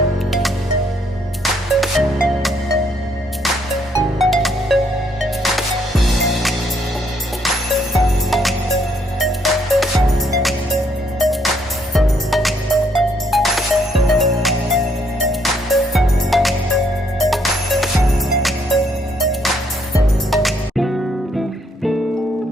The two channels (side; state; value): both; normal; correlation 0.70